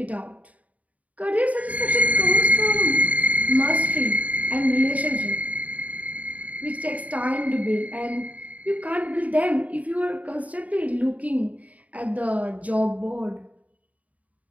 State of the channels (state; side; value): late; left; 0.070 ms